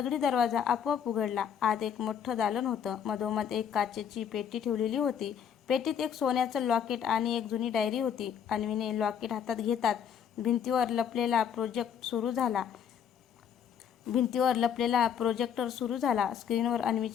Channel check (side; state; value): right; quieter; 8.2 dB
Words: दरवाजा आपोआप उघडला. आत एक मोठं दालन होतं. मधोमध एक काचेची पेटी ठेवलेली होती. पेटीत एक सोन्याचं लॉकेट आणि एक जुनी डायरी होती. अन्वीने लॉकेट हातात घेताच भिंतीवर लपलेला प्रोजेक्टर सुरू झाला. स्क्रीनवर